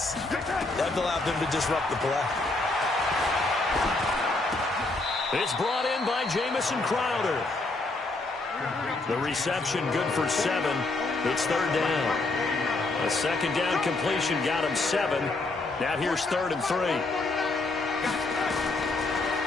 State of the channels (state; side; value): quieter; right; 3.2 dB